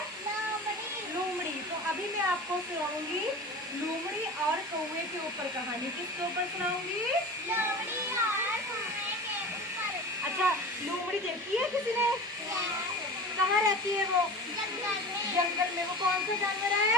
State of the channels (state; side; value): normal; both; correlation 0.34